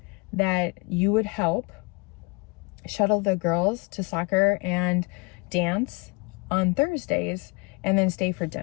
that you would help shuttle the girls to soccer and dance on Thursdays and then stay for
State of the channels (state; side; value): quieter; right; 28.6 dB